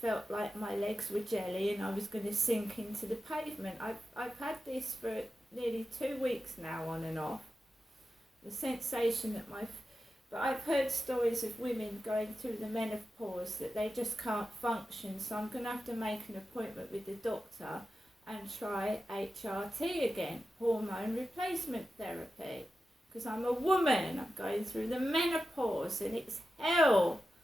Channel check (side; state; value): both; normal; correlation 0.91